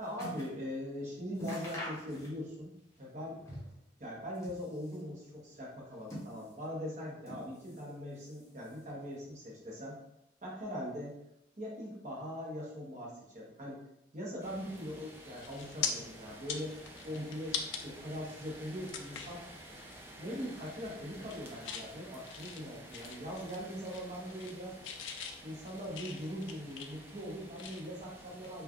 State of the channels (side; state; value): both; normal; correlation 0.43